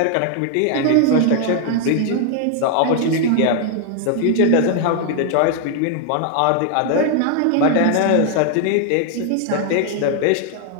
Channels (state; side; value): different; both; correlation 0.00